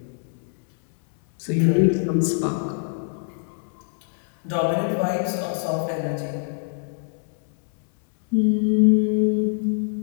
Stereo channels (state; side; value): silent; right; 62 dB below the other